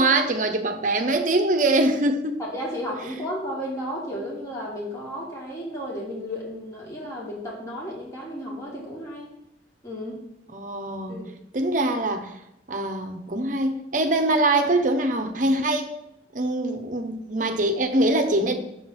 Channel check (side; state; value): both; normal; correlation 0.28